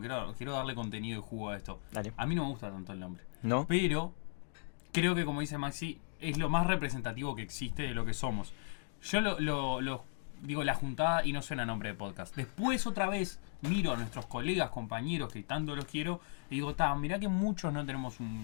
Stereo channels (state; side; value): silent; right; digital silence